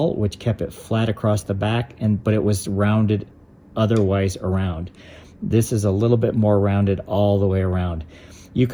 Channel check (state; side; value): identical; both; correlation 1.00